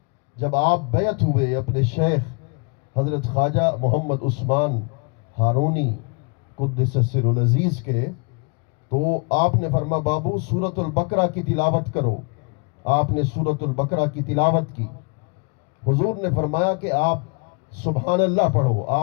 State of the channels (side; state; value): right; quieter; 34.2 dB